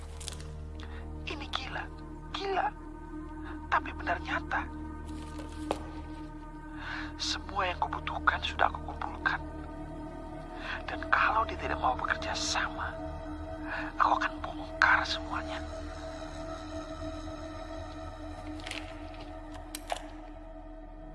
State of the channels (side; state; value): both; identical; correlation 1.00